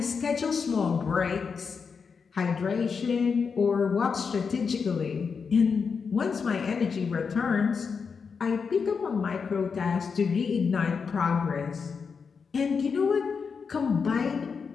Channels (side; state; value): right; quieter; 5.7 dB